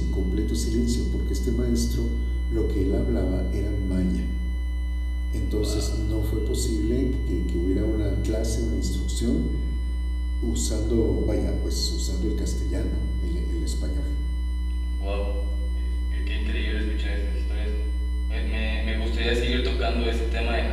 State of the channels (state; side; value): identical; both; correlation 1.00